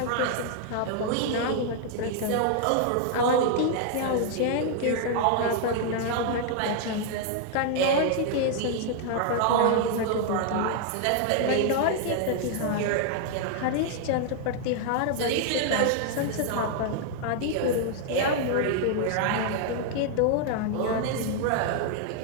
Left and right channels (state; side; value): different; both; correlation 0.00